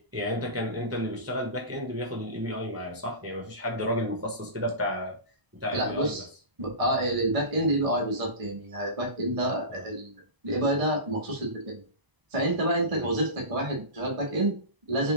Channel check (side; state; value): left; late; 1.0 ms